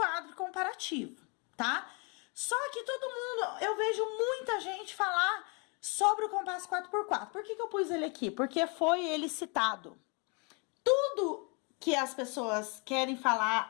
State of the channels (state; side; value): quieter; right; 33.3 dB